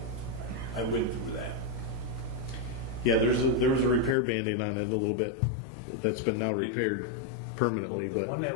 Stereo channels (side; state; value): right; drops out; at 4.2 s